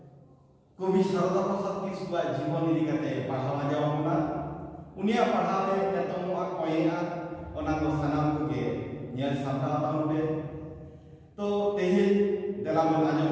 कवि शारदा प्रसाद किस्कुआ जीवन इदी कते पढ़ावा जावना उनिया पढ़ावे एतमवा कोयना ओना को सनाम के नेल सामना ताउबे तो तेहे देला मन आजम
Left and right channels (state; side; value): identical; both; correlation 1.00